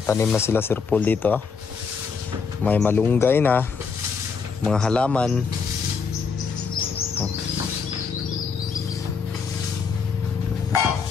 tanim na sila Sir Paul dito. May malunggay na, mga halaman.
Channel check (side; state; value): right; quieter; 5.5 dB